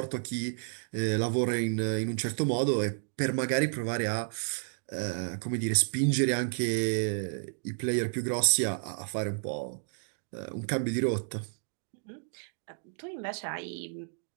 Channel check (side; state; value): left; silent; digital silence